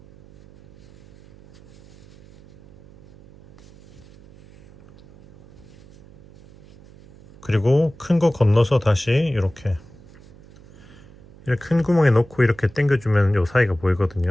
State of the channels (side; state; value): right; noise; hum, 24 dB below the sound